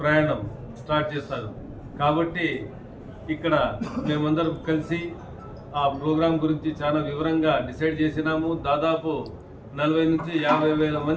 స్టార్ట్ చేస్తారు. కాబట్టి ఇక్కడ మేమందరం కలిసి ఆ ప్రోగ్రాం గురించి చాలా వివరంగా డిసైడ్ చేసినాము. దాదాపు 40 నుంచి 50 వేల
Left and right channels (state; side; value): identical; both; correlation 1.00